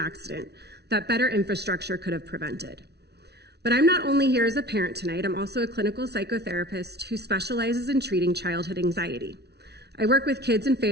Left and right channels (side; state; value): left; late; 0.49 ms